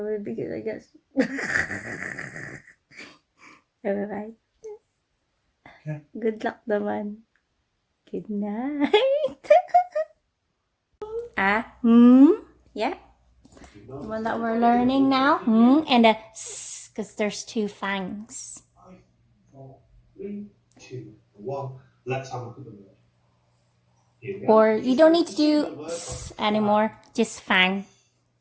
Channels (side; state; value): both; identical; correlation 1.00